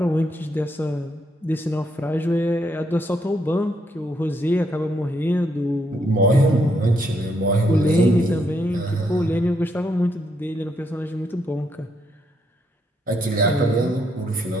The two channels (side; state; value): both; normal; correlation 0.76